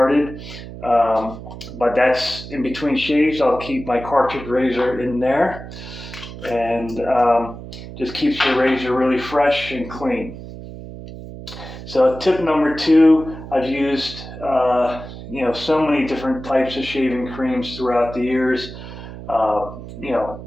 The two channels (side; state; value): right; noise; hum, 12 dB below the sound